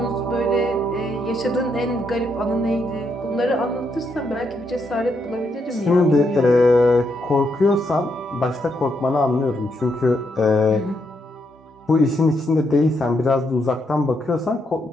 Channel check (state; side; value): normal; both; correlation 0.78